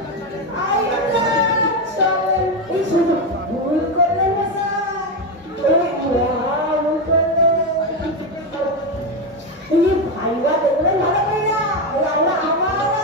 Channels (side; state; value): both; normal; correlation 0.11